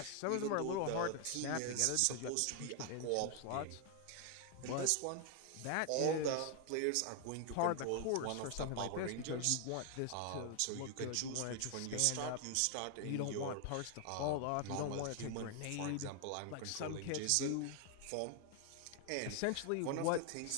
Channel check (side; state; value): both; different; correlation 0.00